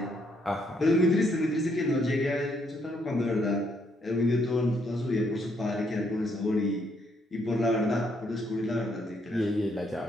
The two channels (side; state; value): both; normal; correlation 0.72